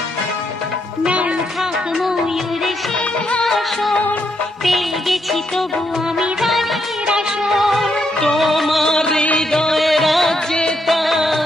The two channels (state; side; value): normal; both; correlation 0.78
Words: নাই থাক ময়ূর সিংহাসন, পেয়ে গেছি তবু আমি রানীর আসন। তোমার হৃদয়ে রাজ্যে